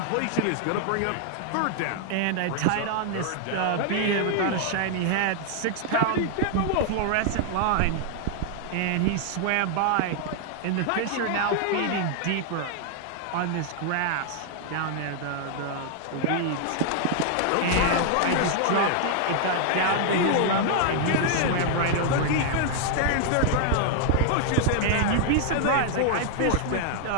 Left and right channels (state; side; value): different; both; correlation -0.01